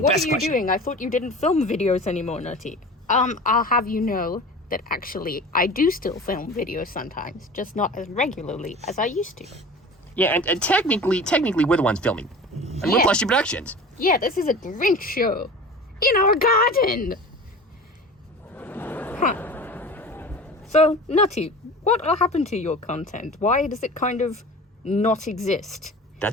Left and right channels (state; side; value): normal; both; correlation 0.37